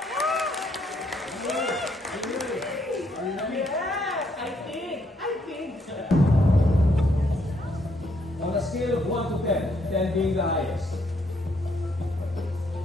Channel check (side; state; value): both; normal; correlation 0.72